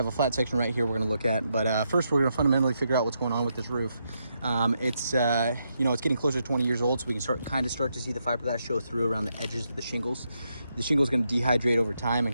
a flat section right here we're going to look at. But first, we're going to fundamentally figure out what's going on with this roof. It's getting closer to 20 years old, so we can start to see the fiberglass show through around the edges of the shingles. The shingle is going to dehydrate over time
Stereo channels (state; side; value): inverted; both; correlation -0.81